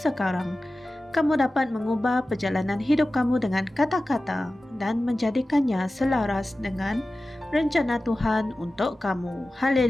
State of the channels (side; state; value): both; normal; correlation 0.95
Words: kamu dapat mengubah perjalanan hidup kamu dengan kata-kata dan menjadikannya selaras dengan rencana Tuhan untuk kamu.